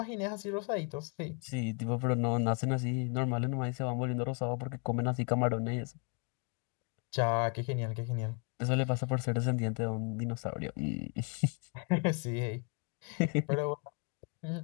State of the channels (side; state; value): right; quieter; 37.1 dB